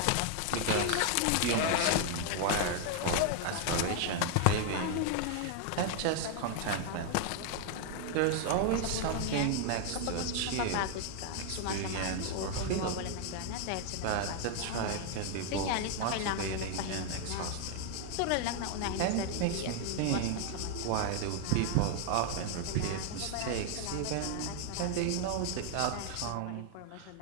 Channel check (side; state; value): both; different; correlation 0.00